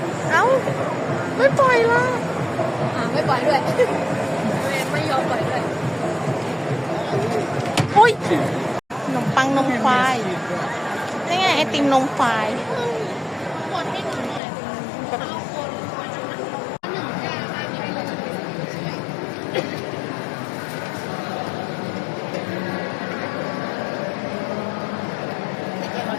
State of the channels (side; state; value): right; drops out; at 14.4 s